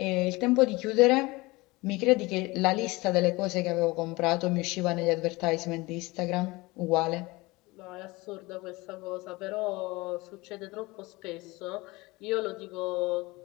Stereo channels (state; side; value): quieter; right; 22.5 dB